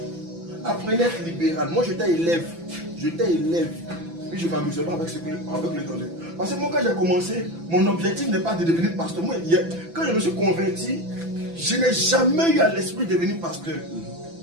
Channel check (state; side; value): late; left; 6.0 ms